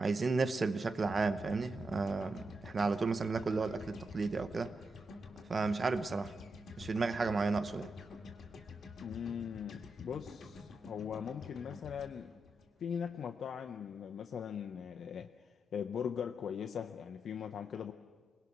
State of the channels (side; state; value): both; normal; correlation 0.85